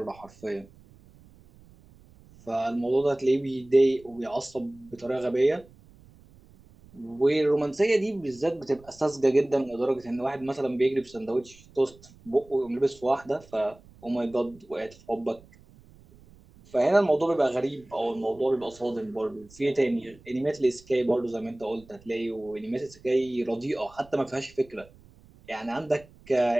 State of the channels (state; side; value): noise; right; rumble, 25 dB below the sound